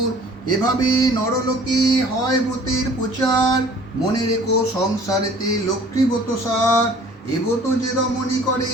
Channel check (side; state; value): both; normal; correlation 0.51